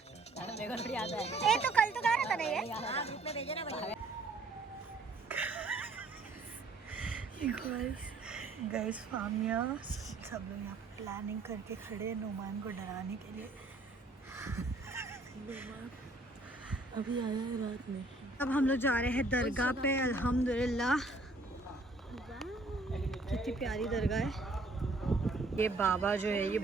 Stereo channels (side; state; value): left; quieter; 3.1 dB